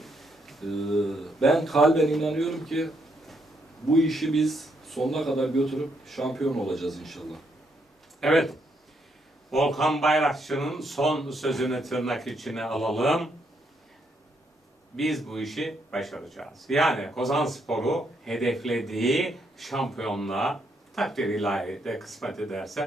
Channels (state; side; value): normal; both; correlation 0.75